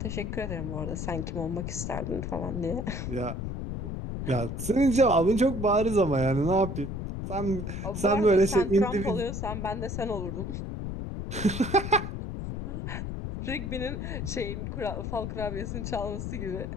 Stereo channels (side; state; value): left; noise; rumble, 5 dB below the sound